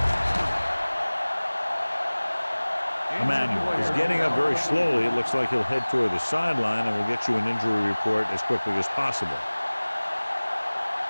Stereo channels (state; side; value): inverted; both; correlation -1.00